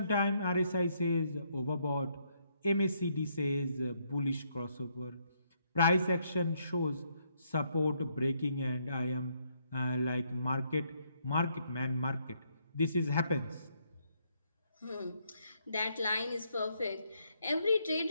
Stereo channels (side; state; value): both; inverted; correlation -0.74